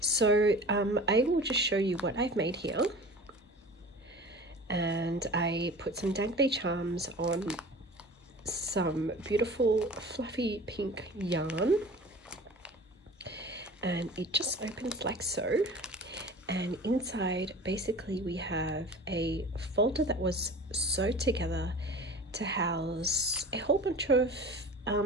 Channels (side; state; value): both; normal; correlation 0.40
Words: So I will just show you what I've made here, and I put some dangly charms on some beautiful fluffy pink yarn, and it just opens like so, and inside basically we have a folder that was sewed together to house a whole bunch of